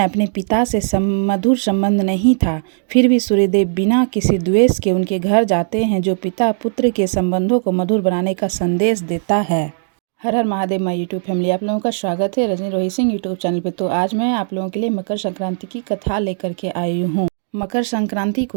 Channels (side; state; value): left; silent; digital silence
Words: अपने पिता से मधुर संबंध नहीं था, फिर भी सूर्यदेव बिना किसी द्वेष के उनके घर जाते हैं, जो पिता पुत्र के संबंधों को मधुर बनाने का संदेश देता है। हर हर महादेव माय यूट्यूब फैमिली, आप लोगों का स्वागत है रजनी रोहित सिंह यूट्यूब चैनल पे। तो आज मैं आप लोगों के लिए मकर संक्रांति की कथा लेकर के आई हूँ। मकर संक्रांति